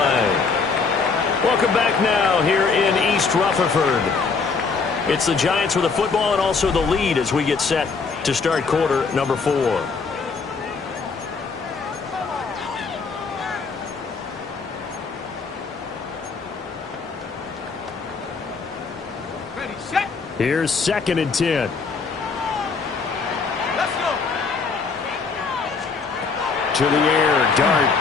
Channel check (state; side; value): quieter; right; 4.9 dB